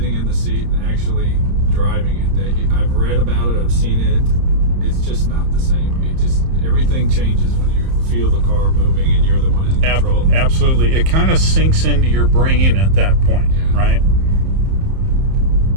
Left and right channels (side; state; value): left; late; 31 ms